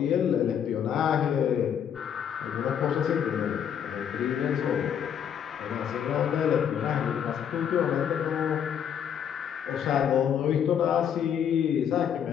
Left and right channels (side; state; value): right; quieter; 8.6 dB